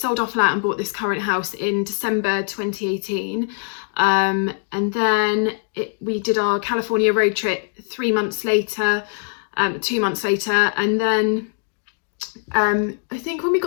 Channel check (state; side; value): silent; right; 57 dB below the other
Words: our flat and bought this current house in December 2018. And then we did our California road trip 2 months later. And then I think when we